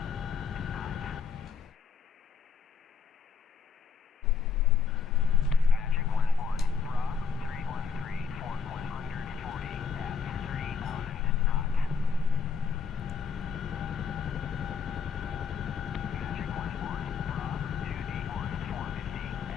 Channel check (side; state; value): right; quieter; 6.1 dB